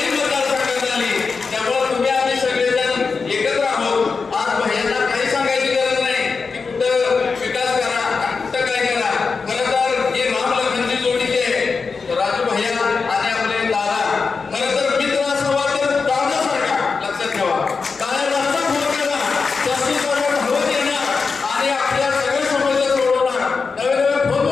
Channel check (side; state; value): right; quieter; 4.8 dB